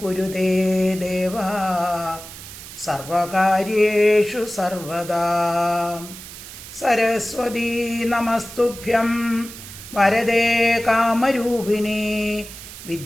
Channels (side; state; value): right; noise; hiss, 14 dB below the sound